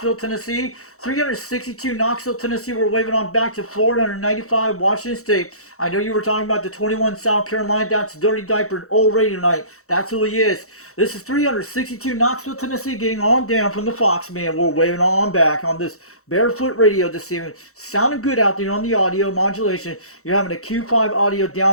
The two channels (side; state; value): right; late; 0.64 ms